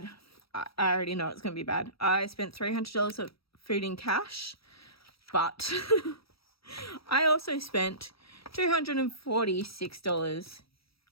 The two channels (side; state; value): right; late; 0.76 ms